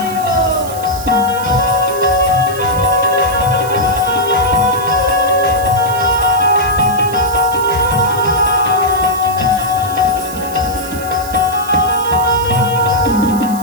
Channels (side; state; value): right; noise; hiss, 13 dB below the sound